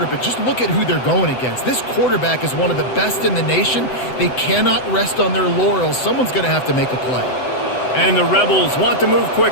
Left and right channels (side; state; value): right; late; 7.9 ms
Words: but just look at who they're going against. This quarterback is one of the best in the nation. They cannot rest on their laurels. Someone's going to have to make a play. And the Rebels want to move